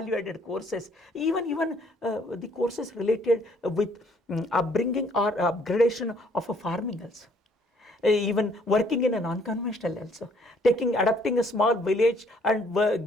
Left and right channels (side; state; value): both; normal; correlation 0.63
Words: courses, even the courses related with upbringing or upgradation of a farming also. Even working in a non-conventional also, adapting a small village and